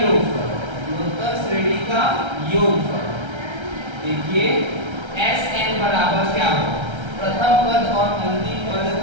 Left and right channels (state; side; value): late; left; 1.3 ms